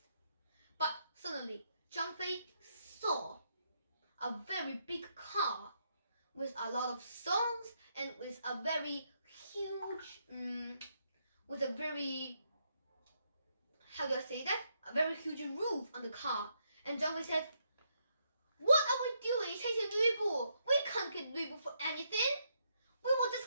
But suddenly, Zhang Fei saw a very big car with a lot of songs and with a very huge, how do I say that? A very huge roof on the car. And Zhang Fei said, "What are we doing chasing Lu Bu? We can't get Lu Bu for anything. We will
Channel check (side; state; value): both; inverted; correlation -0.77